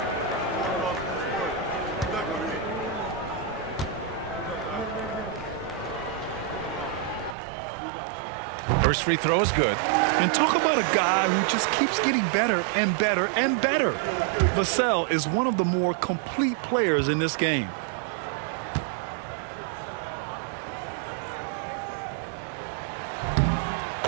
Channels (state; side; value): drops out; left; at 7.4 s